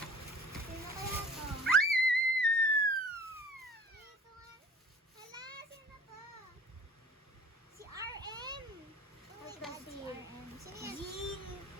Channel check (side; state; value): both; normal; correlation 0.47